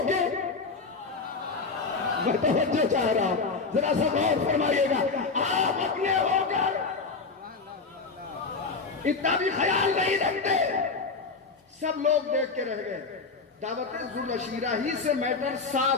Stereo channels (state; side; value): quieter; right; 4.4 dB